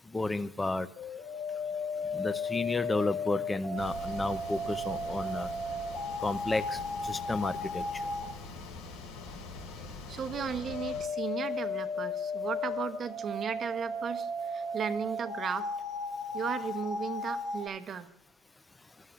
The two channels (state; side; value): normal; both; correlation 0.74